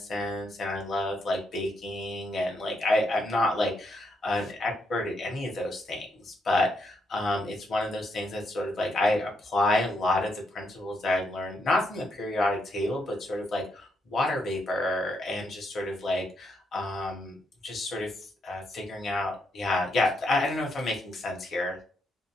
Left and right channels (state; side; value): normal; both; correlation 0.78